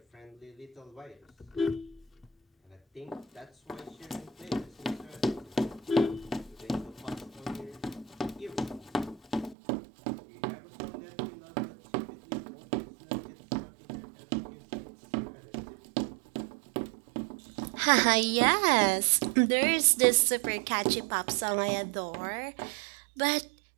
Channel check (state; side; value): drops out; left; at 9.6 s